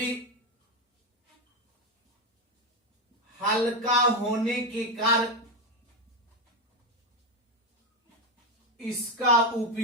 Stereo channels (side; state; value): both; normal; correlation 0.11